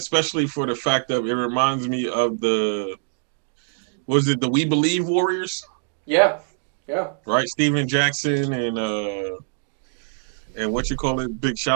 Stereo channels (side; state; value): left; silent; digital silence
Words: for the fact that it reminds me of the. Was it the We Believe Warriors? Yeah. Right, Steven Jackson and what you call it? Big